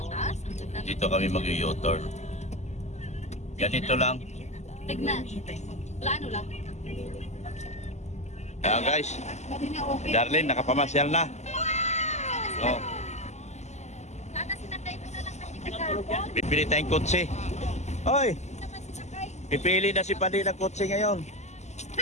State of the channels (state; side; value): late; right; 0.33 ms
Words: Dito kami mag-u-turn. Ganito lang. Tignan. Plano lang. Ayan guys, Pwede na okay. Darlene, nakapamasyal na. Oh, Sana sinakay ko na lang kasi kahapon. bibili tayong kotse. Hoy, Hindi naman sinakay. pipili na si Pandi ng kotse ngayon.